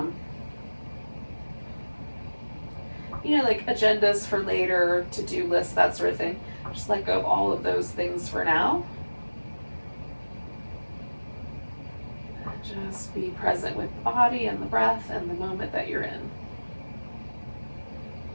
like agendas for later, to-do lists, that sort of thing. Just let go of all of those things for now. And just be present with the body and the breath and the moment that you're in.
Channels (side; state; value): both; inverted; correlation -1.00